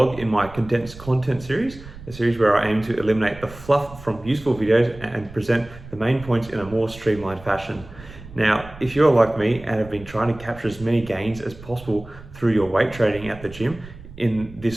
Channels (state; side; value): noise; right; rumble, 17 dB below the sound